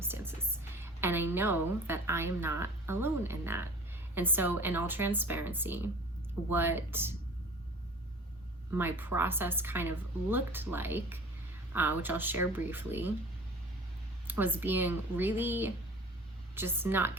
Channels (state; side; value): normal; both; correlation 0.43